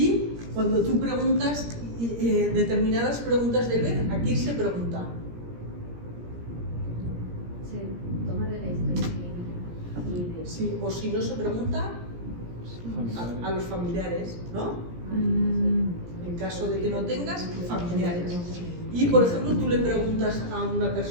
cuando tú preguntas determinadas preguntas del ver, aquí se pregunta. Se toma de la historia clínica. Sí, o si no se pregunta a los familiares, ¿no? En caso de que no tengas familiares. Y por ejemplo, tú le preguntas a una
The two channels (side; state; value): left; late; 17 ms